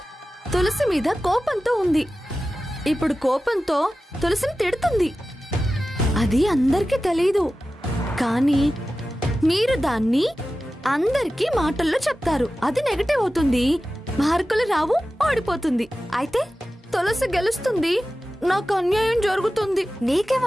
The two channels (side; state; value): both; normal; correlation 0.94